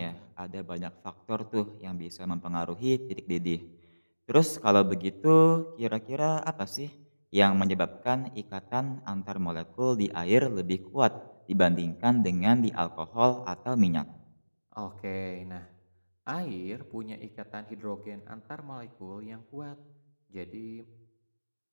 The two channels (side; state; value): both; inverted; correlation -1.00